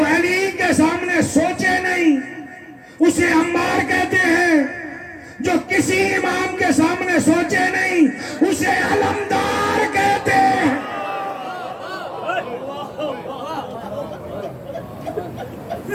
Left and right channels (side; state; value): both; identical; correlation 1.00